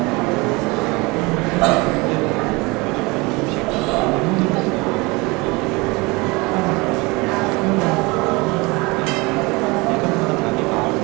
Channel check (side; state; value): left; quieter; 25.1 dB